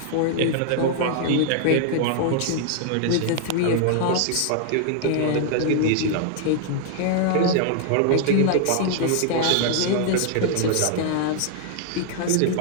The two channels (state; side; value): different; both; correlation 0.00